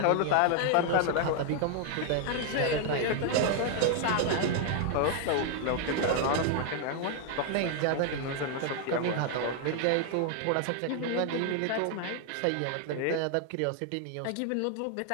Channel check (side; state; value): both; different; correlation 0.00